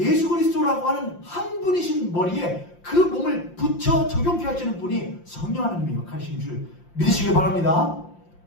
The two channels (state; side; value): late; right; 5.7 ms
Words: 그리스도라고 하는 한 분이신 머리에 그 몸을 붙여 적용케 하시는 분이 성령 하나님의 역할이신 줄 믿으시길 바랍니다.